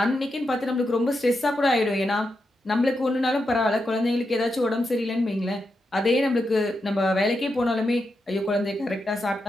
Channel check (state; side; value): normal; both; correlation 0.86